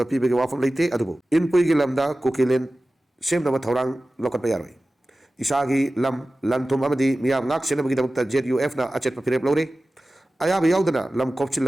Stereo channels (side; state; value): both; normal; correlation 0.96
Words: pibege wafam leite adubo inpui gilamda kuki len semna ma thorang lokat payaroi isagi lam lanthum amadi miyam ngak senabagi damukta ZUF na achet papirep lore ayaba yaudana lam kopchil